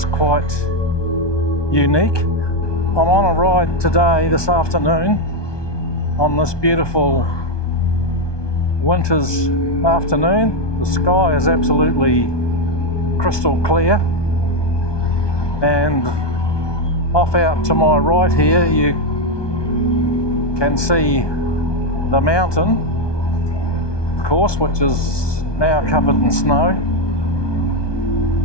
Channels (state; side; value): late; right; 1.2 ms